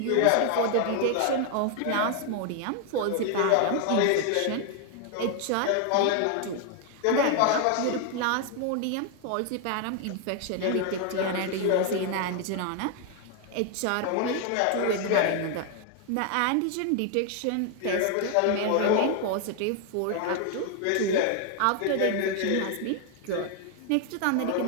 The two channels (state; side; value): different; both; correlation 0.00